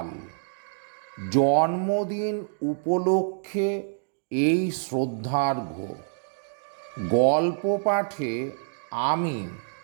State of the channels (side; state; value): left; silent; digital silence